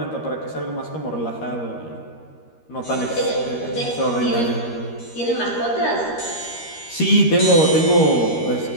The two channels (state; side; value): late; right; 13 ms